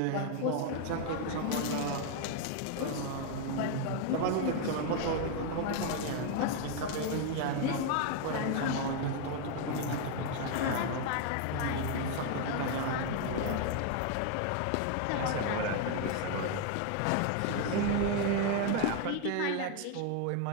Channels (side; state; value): both; different; correlation 0.01